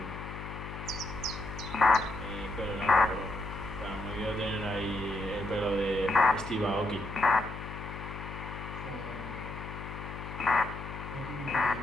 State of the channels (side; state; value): left; noise; hum, 9 dB below the sound